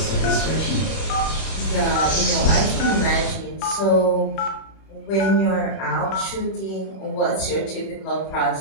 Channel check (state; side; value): late; right; 31 ms